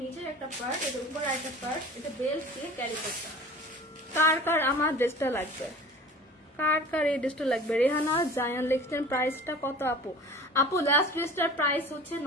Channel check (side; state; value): both; normal; correlation 0.41